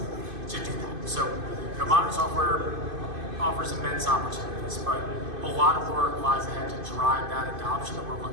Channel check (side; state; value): left; late; 2.5 ms